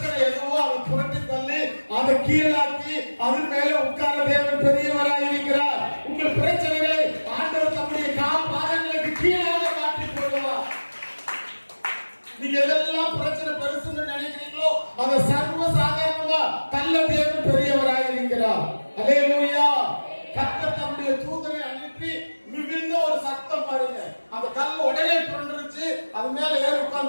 எதுவோ அதை புரட்டி தள்ளி அதை கீழாக்கி அதன் மேல உட்கார்ந்த தேவன் பெரியவராய் இருக்கிறார். உங்கள் பிரச்சனைகளை ஆண்டவர் தம்முடைய பாதங்களுக்கு கீழாக மாற்றி போடுவார். நீங்க எதெல்லாம் பிரச்சனை பெருசுன்னு நினைக்கிறீங்களோ நல்ல தேவன் பெரியவராய் இருக்கிறார். அல்லேலூயா. கர்த்தர் தம்முடைய தூதனை அனுப்பி மிகுந்த ஒரு சத்தம் பாருங்க. அந்த கல் உடனே புரண்டுருச்சு. அது மேல ஏறி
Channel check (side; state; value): both; inverted; correlation -1.00